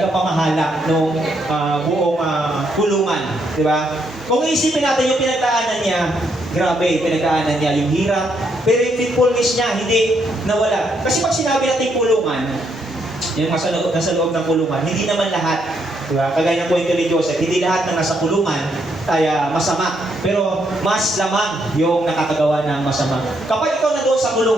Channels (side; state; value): both; normal; correlation 0.75